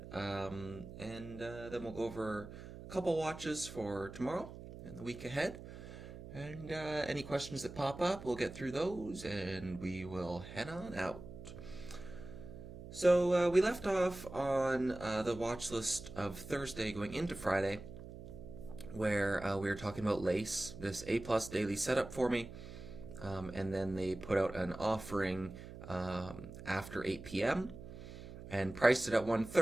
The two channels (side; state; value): right; noise; hum, 13 dB below the sound